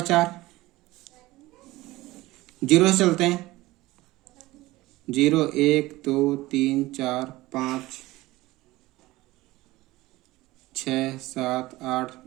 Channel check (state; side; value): quieter; left; 18.9 dB